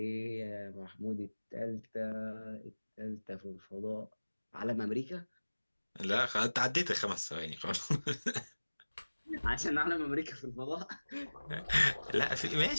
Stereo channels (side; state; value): both; inverted; correlation -1.00